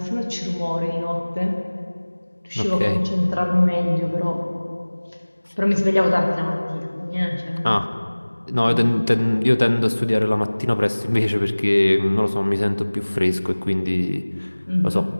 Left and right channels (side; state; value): both; inverted; correlation -1.00